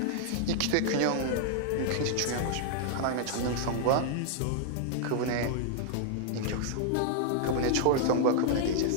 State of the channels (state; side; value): different; both; correlation -0.01